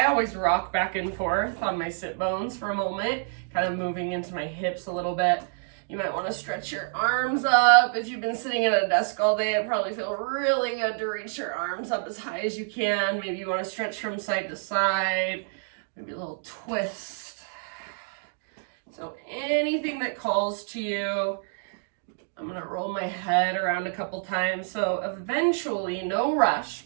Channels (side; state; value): left; silent; digital silence